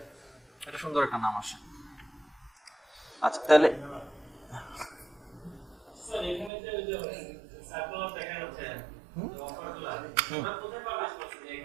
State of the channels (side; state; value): left; drops out; at 6.5 s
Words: এটা সুন্দর একটা নাম আসে। আচ্ছা, তাহলে